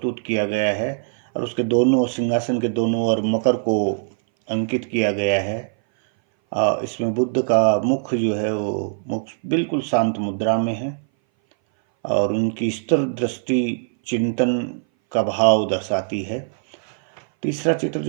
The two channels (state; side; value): silent; left; 59 dB below the other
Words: किया गया है और उसके दोनों सिंहासन के दोनों ओर मकर को अंकित किया गया है। इसमें बुद्ध का मुख जो है वो मुख बिल्कुल शांत मुद्रा में है और उनकी स्थिर दृष्टि चिंतन का भाव दर्शाती है। तीसरा चित्र